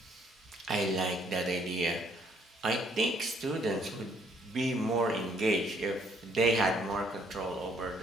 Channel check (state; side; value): normal; both; correlation 0.66